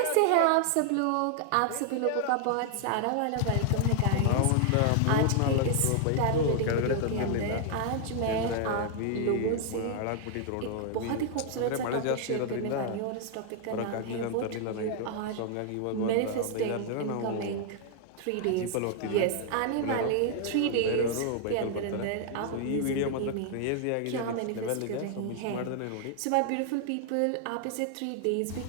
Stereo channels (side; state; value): both; different; correlation 0.00